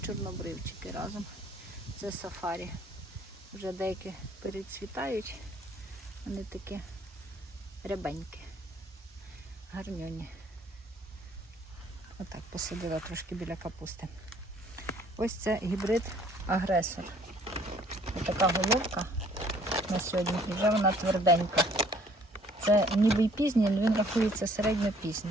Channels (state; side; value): normal; both; correlation 0.59